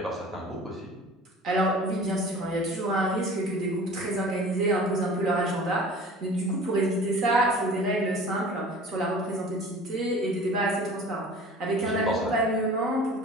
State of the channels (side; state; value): both; normal; correlation 0.43